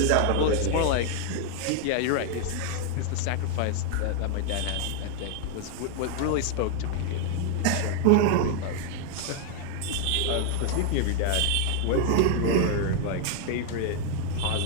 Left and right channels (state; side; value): different; both; correlation 0.00